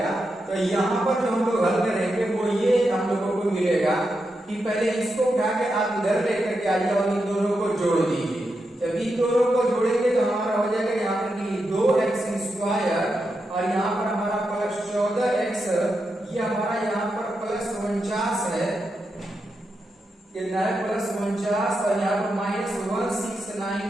तो यहाँ पर जो हम लोग हल करेंगे वो ये हम लोगों को मिलेगा कि पहले इसको उठा के आप इधर लेकर के आइए और इन दोनों को जोड़ दीजिए। जब इन दोनों को जोड़ेंगे तो हमारा हो जाएगा यहाँ पर कि 2x स्क्वायर और यहाँ पर हमारा प्लस 14x, ये हमारा यहाँ पर प्लस 49 है, कितना है प्लस 49। और यहाँ पर माइनस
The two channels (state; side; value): normal; both; correlation 0.86